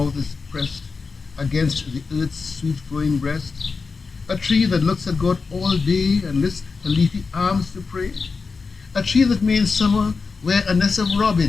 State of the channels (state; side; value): quieter; right; 4.6 dB